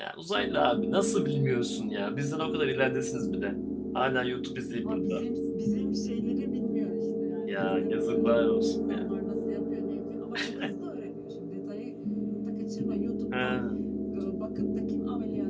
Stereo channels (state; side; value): identical; both; correlation 1.00